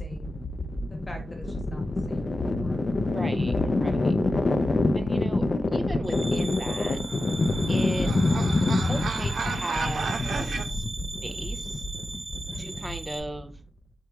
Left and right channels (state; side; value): normal; both; correlation 0.92